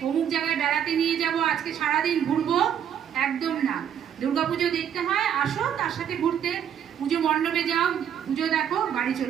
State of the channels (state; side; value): quieter; left; 9.0 dB